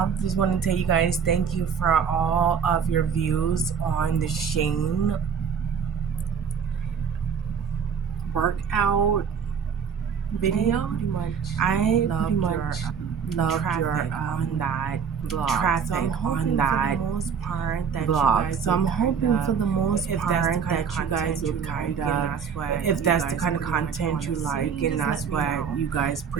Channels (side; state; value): left; quieter; 6.8 dB